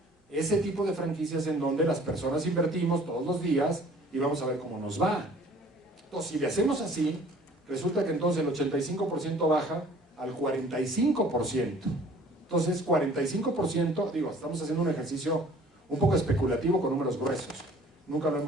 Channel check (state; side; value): normal; both; correlation 0.52